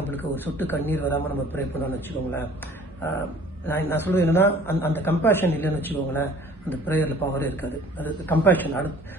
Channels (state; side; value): normal; both; correlation 0.51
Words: ஒரு சொட்டு கண்ணீர் வராமல் நம்ம ப்ரே பண்ணோம்னு வச்சுக்கோங்களேன். நான் சொல்கிறது என்னென்னா, அந்த கம்பேஷன் இல்லைன்னு வச்சுக்கோங்களேன், அந்த ப்ரேயரில் பவரே இருக்காது. அது கம்பேஷன்,